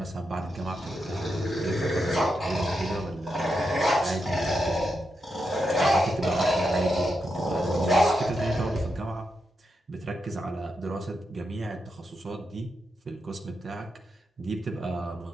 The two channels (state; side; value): normal; both; correlation 0.85